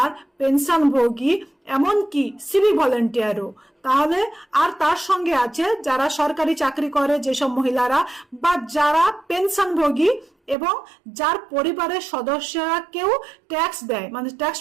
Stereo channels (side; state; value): left; drops out; at 10.6 s